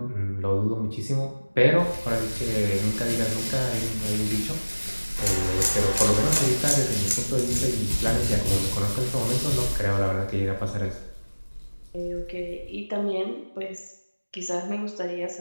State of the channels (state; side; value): inverted; both; correlation -1.00